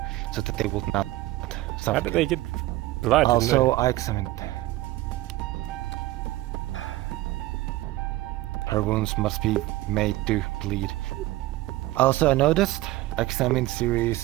so that they would not suffer. How did they get blood? Also, I examined. Her wounds must be made to bleed. Also, I noticed, examined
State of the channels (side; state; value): left; quieter; 17.3 dB